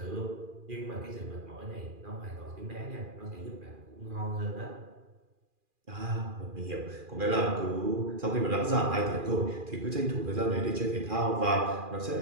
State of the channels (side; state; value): left; late; 2.4 ms